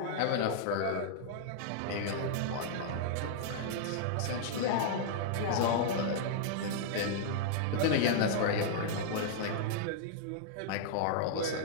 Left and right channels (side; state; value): both; different; correlation -0.01